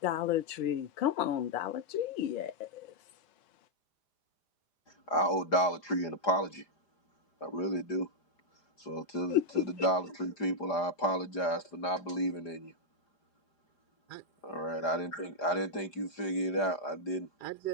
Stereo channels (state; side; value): late; right; 4.9 ms